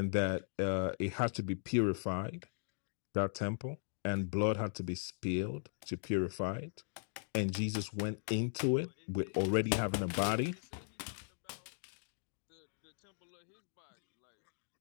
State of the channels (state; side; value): silent; right; digital silence